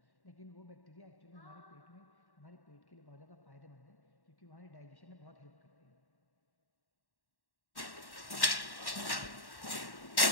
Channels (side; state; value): right; late; 1.1 ms